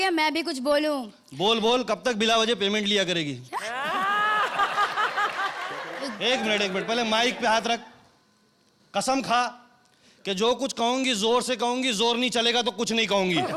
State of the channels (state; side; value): identical; both; correlation 1.00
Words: मैं भी कुछ बोलूं? बोल बोल, कब तक बिला वजह पेमेंट लिया करेगी? एक मिनट, पहले माइक पे हाथ रख। कसम खा कि जो कुछ कहूंगी जोर से कहूंगी, जोर नहीं चलेगा तो कुछ नहीं कहूंगी।